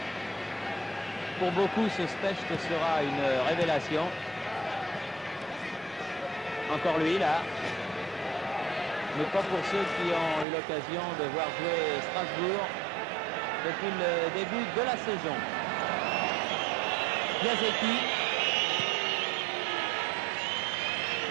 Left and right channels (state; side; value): drops out; left; at 10.5 s